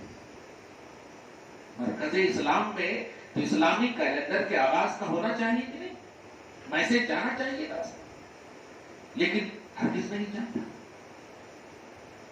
مرکز اسلام میں تو اسلامی کیلنڈر کے آغاز کا ہونا چاہیے کہ نہیں، میسج جانا چاہیے نا، لیکن ہرگز نہیں جاتا۔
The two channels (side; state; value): both; identical; correlation 1.00